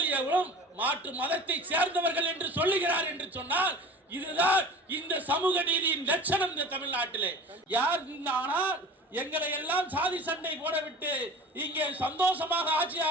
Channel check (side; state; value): both; normal; correlation 0.39